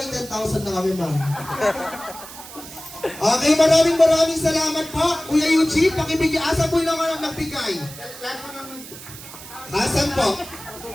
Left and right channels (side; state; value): right; noise; hiss, 15 dB below the sound